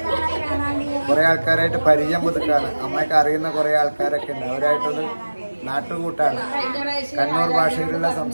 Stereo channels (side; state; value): both; inverted; correlation -1.00